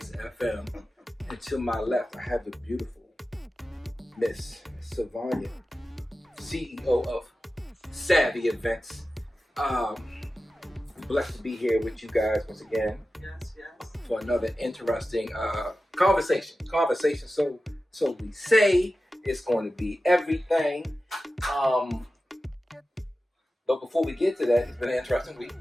FM. And to my left, I have the beautiful Miss Savanya, CEO of Savvy Events. Blessed to be here with you guys once again. Yes. For another interesting conversation. So we say it's going to be everything. But before we get to that, it's been an interesting week.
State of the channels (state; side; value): normal; both; correlation 0.94